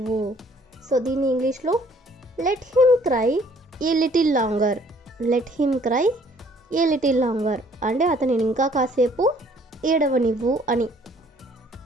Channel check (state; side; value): normal; both; correlation 0.59